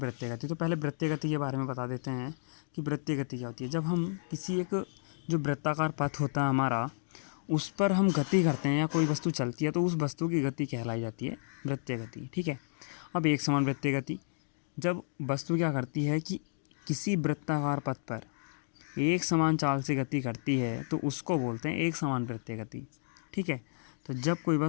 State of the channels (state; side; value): silent; right; digital silence